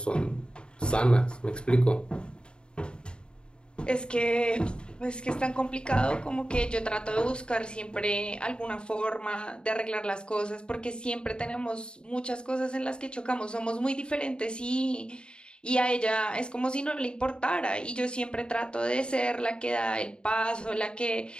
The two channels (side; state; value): right; late; 0.051 ms